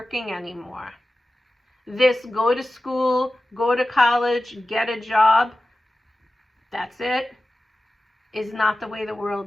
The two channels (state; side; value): normal; both; correlation 0.95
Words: anymore. This go to school, go to college, get a job, that's it, is not the way the